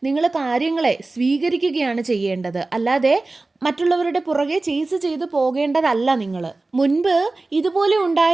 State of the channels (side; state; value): left; quieter; 3.3 dB